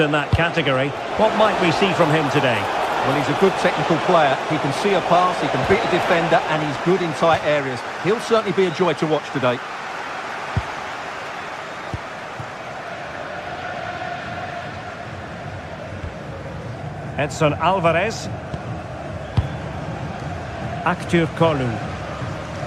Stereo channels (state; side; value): identical; both; correlation 1.00